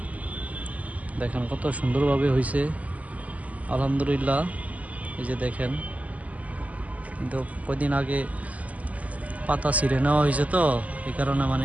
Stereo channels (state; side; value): late; left; 0.073 ms